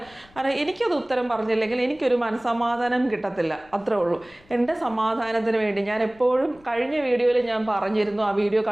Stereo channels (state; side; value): noise; left; rumble, 27 dB below the sound